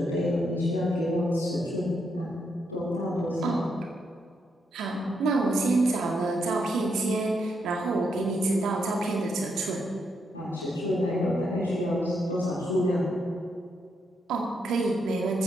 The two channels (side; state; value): both; normal; correlation 0.79